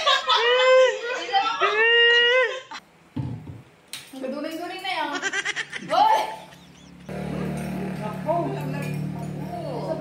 Gaduling-duling na yan. Boy!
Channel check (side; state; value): both; identical; correlation 1.00